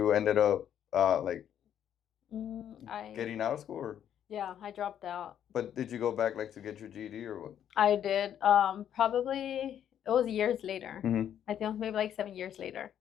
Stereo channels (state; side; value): quieter; right; 9.8 dB